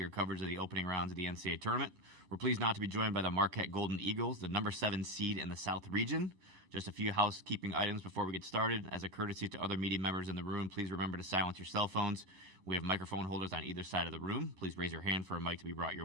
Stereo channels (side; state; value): left; late; 11 ms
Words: coverage of the opening rounds of the NCAA tournament. We're pleased not to be joined by the Marquette Golden Eagles, the number 7 seed in the South region. Just a few housekeeping items before we get started. As a courtesy to other media members in the room, please remember to silence your cell phones. We have microphone holders on either side of the room. Please raise your hand for a mic to be brought